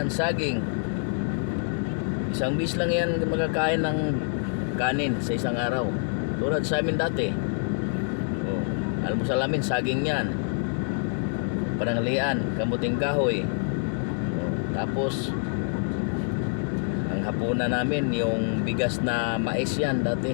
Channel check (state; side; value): silent; right; 61 dB below the other